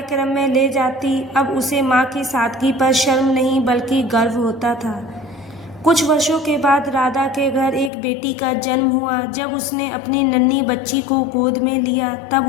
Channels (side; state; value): right; drops out; at 7.9 s